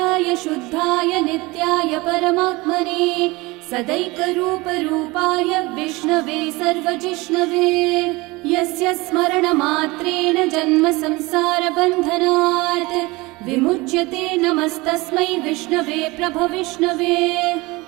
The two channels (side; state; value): left; quieter; 23.0 dB